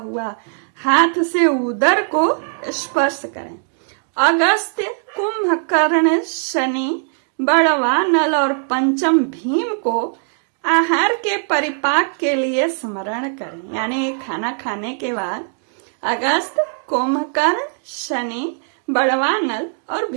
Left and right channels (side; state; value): left; silent; digital silence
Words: हाथ से उदर को स्पर्श करें। अगस्त्य, कुंभकर्ण, शनि, बड़वा, नल और पंचम भीम को आहार के परिपाक के लिए स्मरण करें। यानी खाना खाने के बाद अगस्त, कुंभकर्ण, शनि, बड़वा, नल और